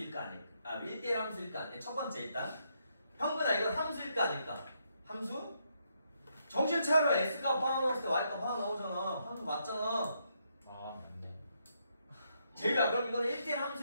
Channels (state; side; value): inverted; both; correlation -0.77